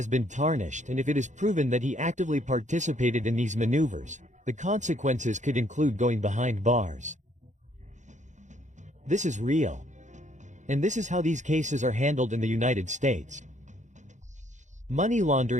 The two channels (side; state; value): left; late; 0.35 ms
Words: been tarnished, and if it is proven that he actively participated in these maneuvers, the consequences could include going behind bars. This is real. And this is how these cases are handled in the United States. Money